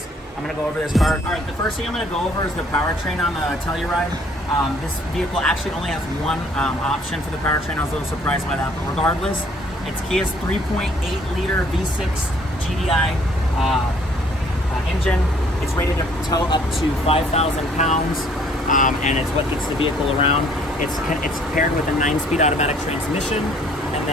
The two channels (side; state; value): both; normal; correlation 0.60